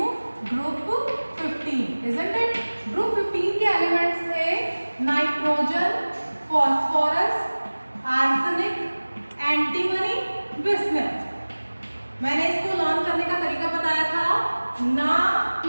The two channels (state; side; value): inverted; both; correlation -1.00